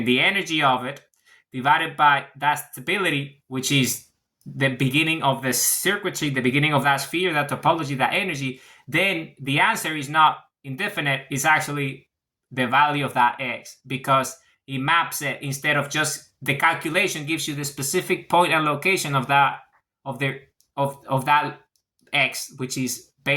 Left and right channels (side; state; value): both; identical; correlation 1.00